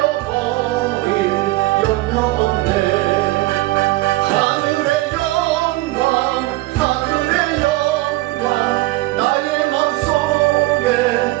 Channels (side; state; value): left; quieter; 19.5 dB